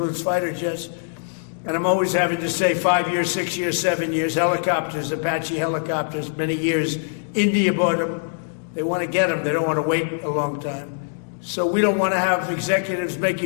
fighter jets. And I'm always having to say 5 years, 6 years, 7 years, helicopters, Apache helicopters, many years. India bought them. They want to get them. They don't want to wait a long time. So we don't want to have executives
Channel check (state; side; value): silent; right; digital silence